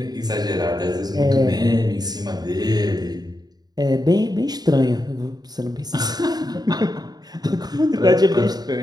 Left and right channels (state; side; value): late; left; 0.19 ms